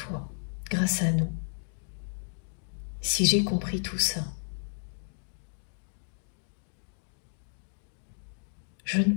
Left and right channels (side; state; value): right; silent; digital silence